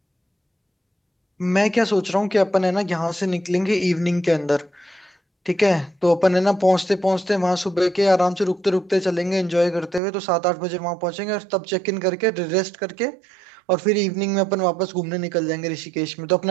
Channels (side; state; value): left; drops out; at 10.0 s